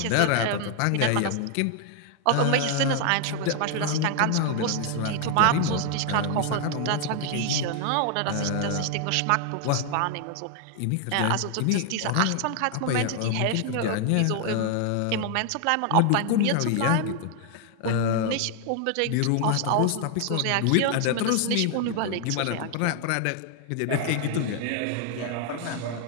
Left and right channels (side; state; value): both; different; correlation 0.00